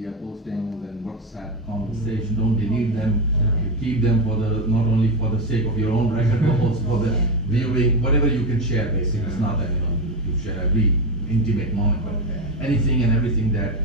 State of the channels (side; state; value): both; normal; correlation 0.13